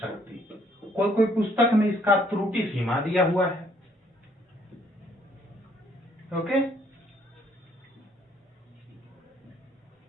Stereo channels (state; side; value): normal; both; correlation 0.66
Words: कोई पुस्तक में इसका त्रुटि सीमा दिया हुआ है, ओके।